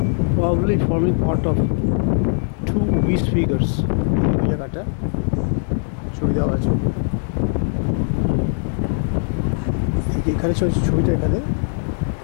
probably forming part of 2 beast figures. এই জায়গাটা ছবি দেওয়া আছে, এখানে ছবিটা এখানে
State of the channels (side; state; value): right; silent; digital silence